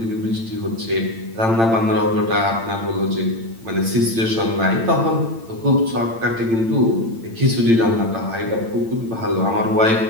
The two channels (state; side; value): late; left; 8.9 ms